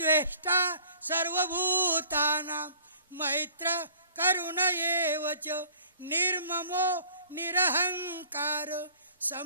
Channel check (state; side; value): inverted; both; correlation -0.54